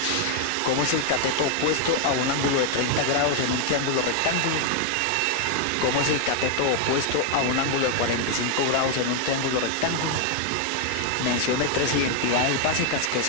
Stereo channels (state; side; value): different; both; correlation 0.00